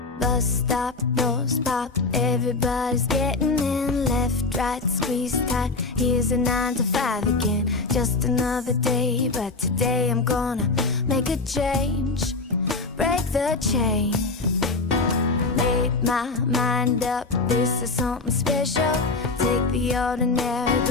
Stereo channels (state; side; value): quieter; right; 3.8 dB